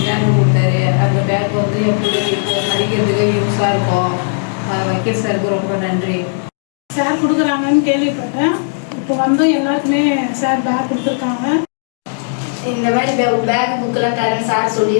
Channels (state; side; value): silent; right; digital silence